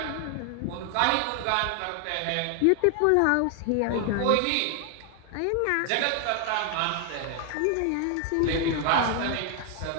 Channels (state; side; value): different; both; correlation 0.00